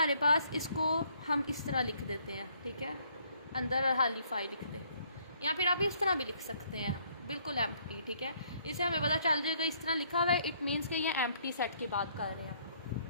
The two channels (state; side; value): inverted; both; correlation -0.65